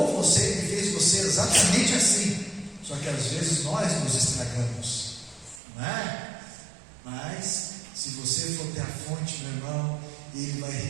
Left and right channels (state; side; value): drops out; left; at 5.6 s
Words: você e fez você exatamente assim. Só que às vezes nós nos estragamos, não é? Mas se você for ter a fonte, meu irmão, Ele vai